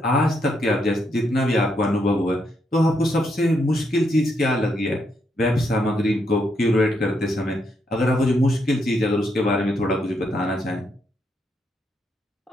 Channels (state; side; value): normal; both; correlation 0.78